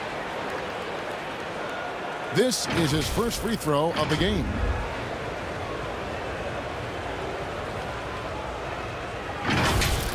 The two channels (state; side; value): identical; both; correlation 1.00